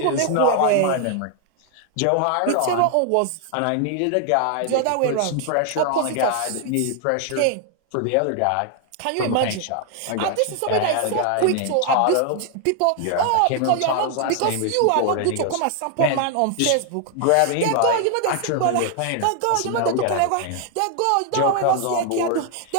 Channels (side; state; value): both; different; correlation 0.00